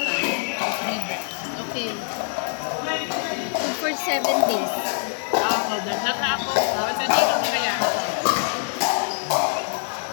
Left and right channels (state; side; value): silent; right; 57 dB below the other